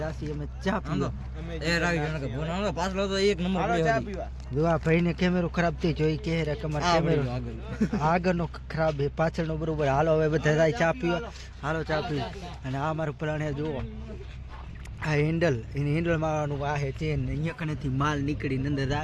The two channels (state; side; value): identical; both; correlation 1.00